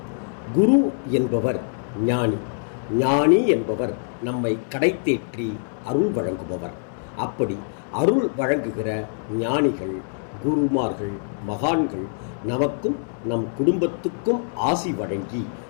குரு என்பவர் ஞானி. ஞானி என்பவர் நம்மை கடைத்தேற்றி அருள் வழங்குபவர். அப்படி அருள் வழங்குகிற ஞானிகள், குருமார்கள், மகான்கள் நமக்கும் நம் குடும்பத்துக்கும் ஆசி வழங்கி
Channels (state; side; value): silent; right; 63 dB below the other